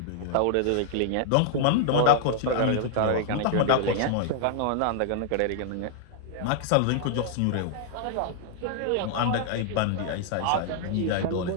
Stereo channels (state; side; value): different; both; correlation -0.01